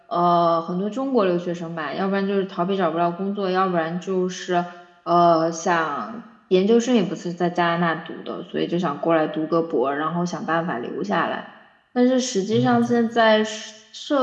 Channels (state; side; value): identical; both; correlation 1.00